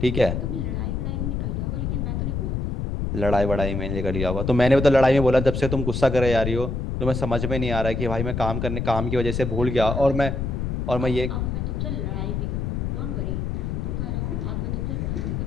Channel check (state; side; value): noise; left; rumble, 1 dB below the sound